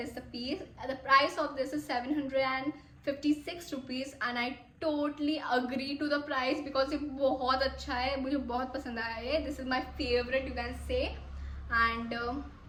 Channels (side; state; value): both; identical; correlation 1.00